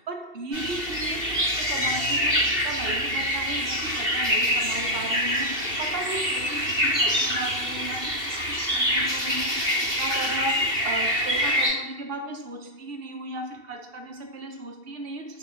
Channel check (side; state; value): left; late; 2.7 ms